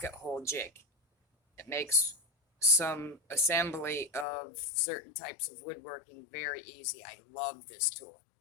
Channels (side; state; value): right; drops out; at 4.2 s